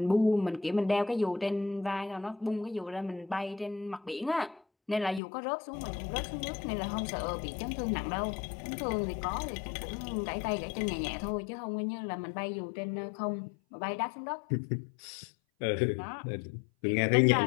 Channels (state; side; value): drops out; right; at 5.2 s